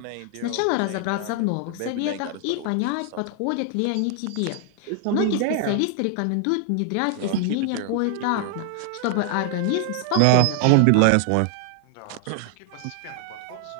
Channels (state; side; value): different; both; correlation 0.00